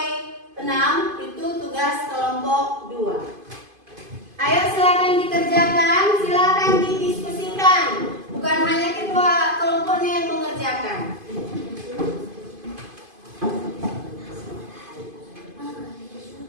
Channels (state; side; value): late; left; 2.5 ms